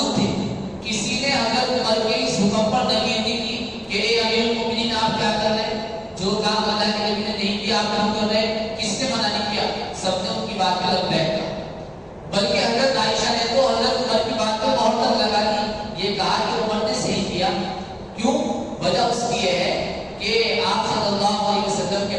تھے۔ کسی نے حضرت عمر کے اس حکم پر نفی نہیں کی کہ اے امیر المومنین آپ کیا کر رہے ہیں، جو کام اللہ کے نبی نے نہیں کیا آپ کیوں کر رہے ہیں، کس نے منع نہیں کیا، سب نے ان کی بات پہ لبیک کہا، بلکہ حضرت عائشہ نے تو حضرت عمر کی بات پہ مہر تک لگا دی، یہ کہا کہ عمر نے صحیح کیا۔ کیوں؟ وجہ اس کی یہ ہے کہ آپ صلی اللہ علیہ وسلم کے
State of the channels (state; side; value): identical; both; correlation 1.00